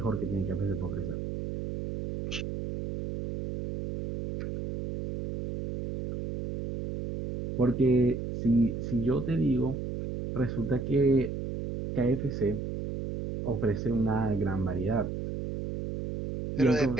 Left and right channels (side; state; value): right; noise; hum, 5 dB below the sound